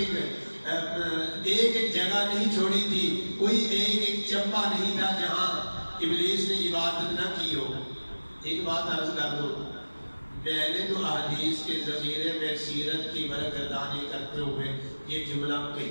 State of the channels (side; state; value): both; inverted; correlation -1.00